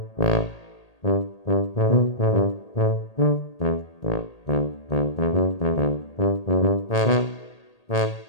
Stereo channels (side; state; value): right; late; 1.8 ms